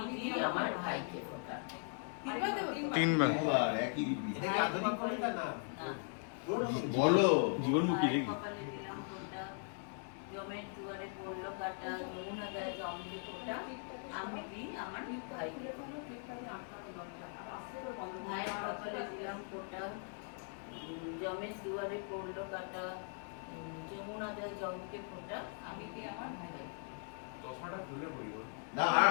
দিই আমার ভাইকে ফোঁটা। তিনবার একই রীতি। এটা কি আধুনিক কবিতা না? বলো জীবনমুখী ভাইয়ের নাকি? কপালে দিলাম ফোঁটা, জমের দুয়ারে পড়লো কাটা, যমুনা দেয় জমকে ফোঁটা, আমি দিই আমার ভাইকে ফোঁটা। ভাইয়ের কপালে দিলাম ফোঁটা, জমের দুয়ারে পড়লো কাটা, যমুনা দেয় জমকে ফোঁটা, আমি দিই আমার ভাইকে। চশমাটা খুলে পড়ি বল। না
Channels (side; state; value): right; silent; 52 dB below the other